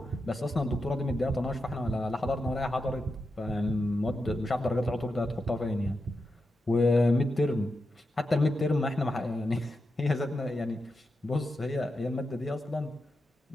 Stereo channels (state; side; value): normal; both; correlation 0.88